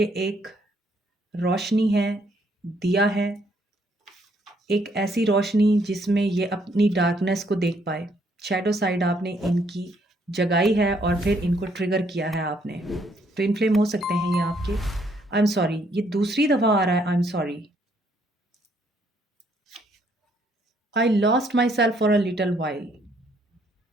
एक रोशनी है, दिया है, एक ऐसी रोशनी जिसमें ये अपनी डार्कनेस को देख पाए। शैडो साइड आपने इनकी जगाई है और फिर इनको ट्रिगर किया है आपने। ट्विन फ्लेम हो सकते हैं ये आपके। आई एम सॉरी, ये दूसरी दफ़ा आ रहा है I am sorry. I lost myself for a little while.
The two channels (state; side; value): normal; both; correlation 0.69